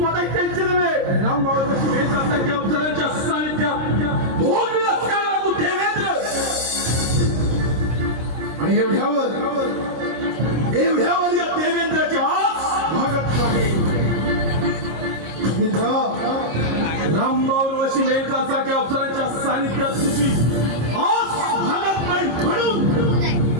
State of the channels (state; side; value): late; left; 26 ms